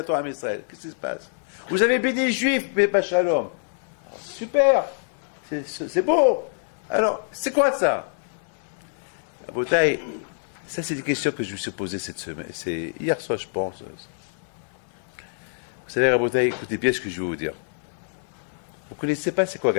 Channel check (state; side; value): silent; right; 60 dB below the other